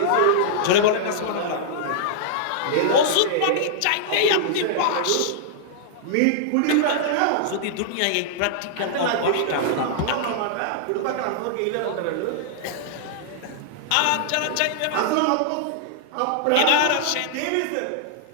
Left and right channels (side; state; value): both; different; correlation -0.01